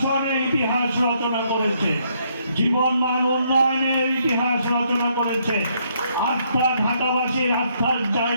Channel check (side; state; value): both; inverted; correlation -0.72